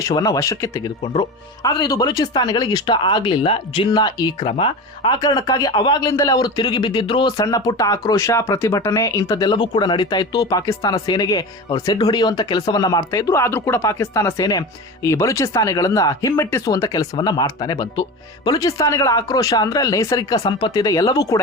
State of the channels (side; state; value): both; normal; correlation 0.28